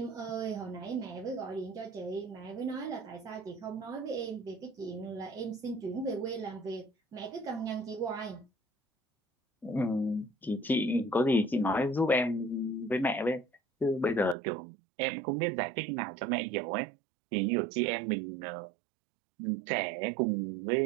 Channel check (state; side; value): drops out; left; at 14.4 s